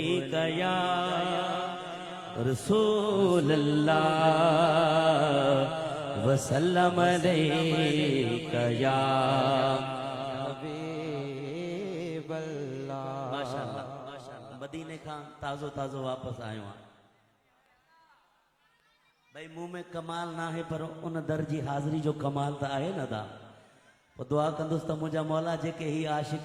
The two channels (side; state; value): both; identical; correlation 1.00